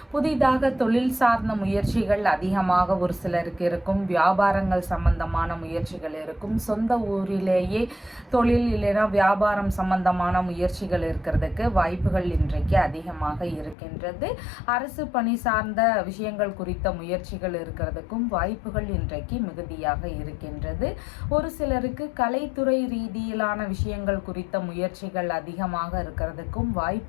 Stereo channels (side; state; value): right; drops out; at 13.8 s